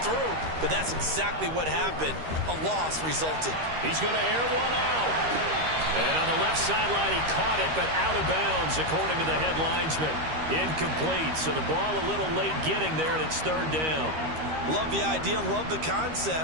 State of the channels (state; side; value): late; left; 13 ms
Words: through, but that's exactly what happened. A loss resulted. He's going to air one out. And on the left sideline, he caught it, but out of bounds, according to the head linesman. Incomplete, so the ball a little late getting there, and it's 3rd down. Love the idea, love the